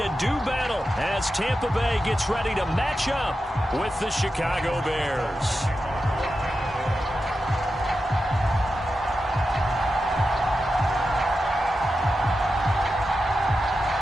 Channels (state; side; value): normal; both; correlation 0.90